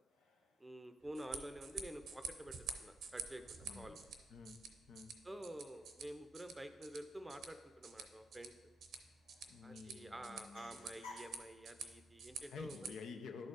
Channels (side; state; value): both; normal; correlation 0.81